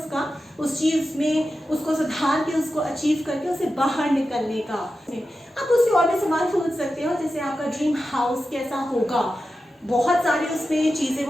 उस चीज़ में उसको सुधार के, उसको अचीव करके उसे बाहर निकलने का। आप उससे और भी सवाल पूछ सकते हो, जैसे आपका ड्रीम हाउस कैसा होगा, बहुत सारे उसमें चीज़ें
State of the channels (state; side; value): normal; both; correlation 0.92